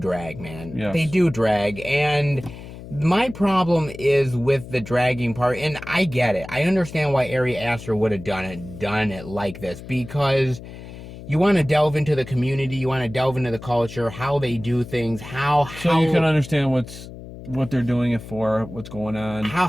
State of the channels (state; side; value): noise; left; hum, 14 dB below the sound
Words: man. Yes. They do drag. And my problem is with the dragging part, and I get it. I understand why Ari Aster would have done it like this, because you want to delve into the community, you want to delve into the culture, how they do things, So you can understand what they're doing it for, what's going on.